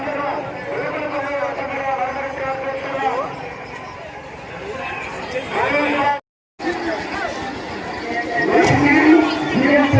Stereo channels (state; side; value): identical; both; correlation 1.00